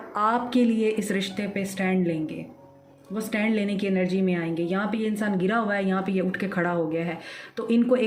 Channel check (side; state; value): both; identical; correlation 1.00